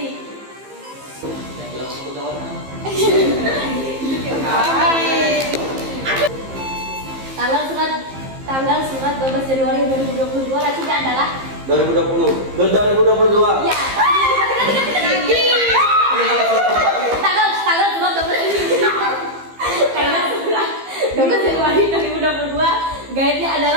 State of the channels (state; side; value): late; left; 15 ms